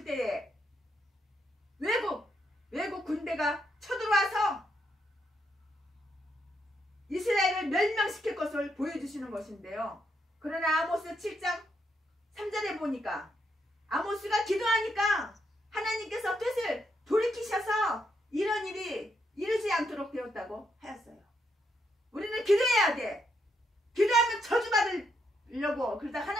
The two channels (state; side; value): normal; both; correlation 0.78